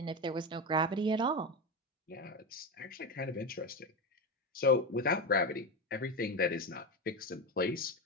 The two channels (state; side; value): normal; both; correlation 0.18